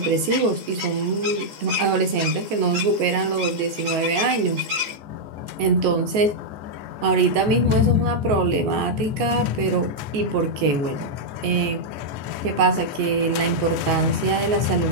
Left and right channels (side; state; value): left; late; 14 ms